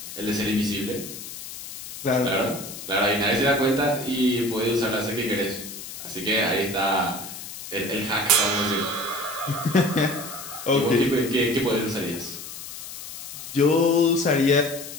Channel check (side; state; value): left; noise; hiss, 11 dB below the sound